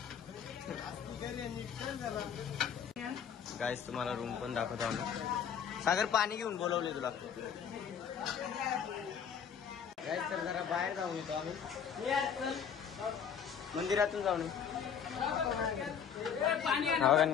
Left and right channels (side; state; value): right; quieter; 7.6 dB